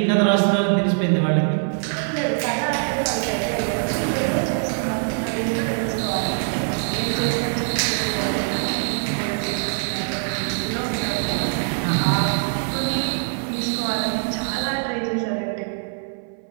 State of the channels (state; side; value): silent; left; 57 dB below the other